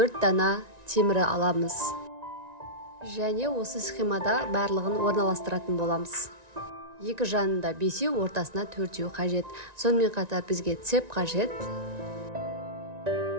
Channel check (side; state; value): left; late; 1.9 ms